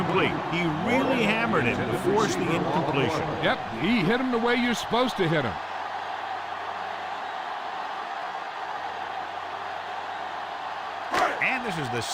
He really hammered it to force the incompletion. Yep, he hit him the way you're supposed to hit him. And this is the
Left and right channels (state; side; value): identical; both; correlation 1.00